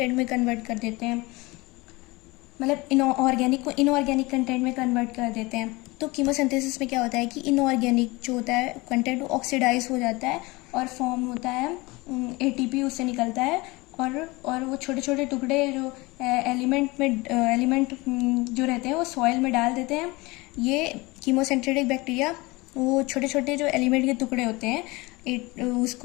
में कन्वर्ट कर देते हैं, मतलब इनऑर्गेनिक को इनऑर्गेनिक कंटेंट में कन्वर्ट कर देते हैं। तो कीमोसिंथेसिस में क्या होता है कि इनऑर्गेनिक जो होता है कंटेंट वो ऑक्सीडाइज हो जाता है और फॉर्म होता है, एटीपी उससे निकलता है, और वो छोटे छोटे टुकड़े जो एलिमेंट जो रहते हैं वो सॉइल में डाल देते हैं। ये कीमोसिंथेटिक बैक्टीरिया वो छोटे छोटे जो एलिमेंट के टुकड़े होते हैं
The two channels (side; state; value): right; quieter; 23.2 dB